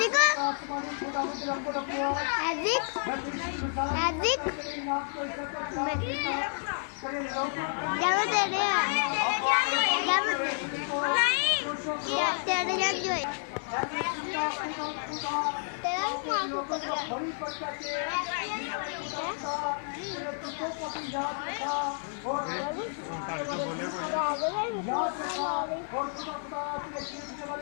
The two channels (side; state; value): right; silent; 58 dB below the other